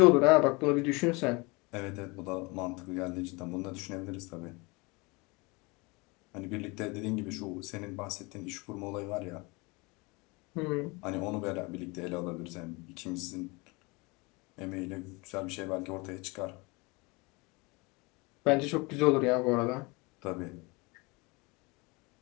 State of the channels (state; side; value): quieter; right; 26.5 dB